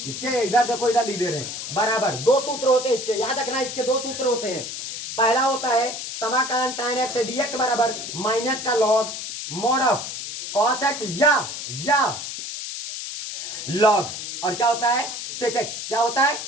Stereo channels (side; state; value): left; noise; hiss, 7 dB below the sound